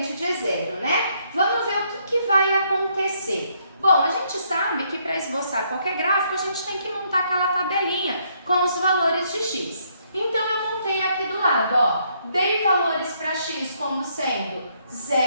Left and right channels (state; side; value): inverted; both; correlation -0.71